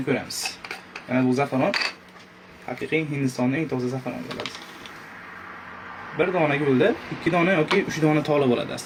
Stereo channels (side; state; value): both; identical; correlation 1.00